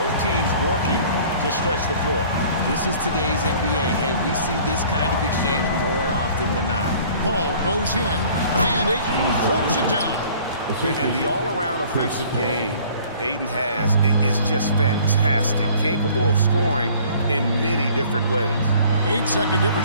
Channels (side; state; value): both; inverted; correlation -0.52